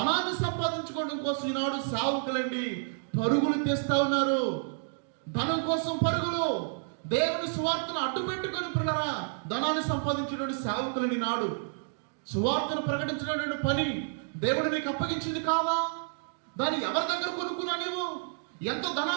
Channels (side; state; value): left; silent; digital silence